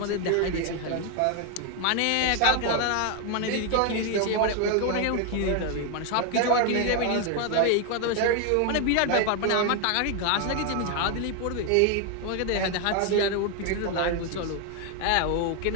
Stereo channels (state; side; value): different; both; correlation 0.01